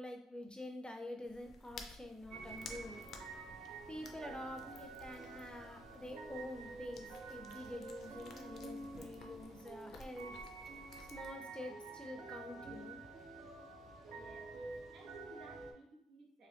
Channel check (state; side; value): normal; both; correlation 0.74